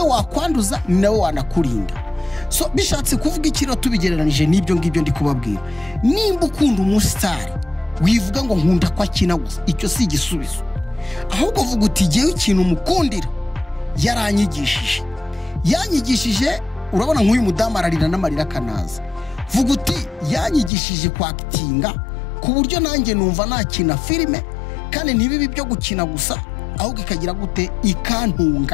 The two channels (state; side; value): drops out; right; at 20.7 s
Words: wakwanduza nawe wanakurinda. So bishatse kuvuga ikiro tubigereranije n'ibyo ngibyo ndi kubabwira. Nimba ukunda umusitari wivuga ngo nkunda ko akina gusa icyo si igisubizo ahubwo vuga uti jewe ikintu mukundira yanyigishije urabona nk'uyu mudamu ararira n'amarira kanaza. Vuga uti yanyigishije kwakitinga ku buryo nanjye numva nakina filime kandi ntibibi byo gukina gusa ahubwo ikagira gute